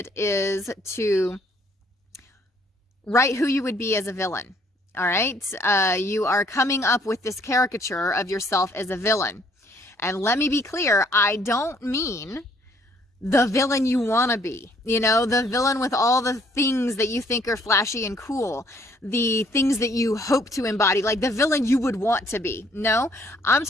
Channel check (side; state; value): both; normal; correlation 0.64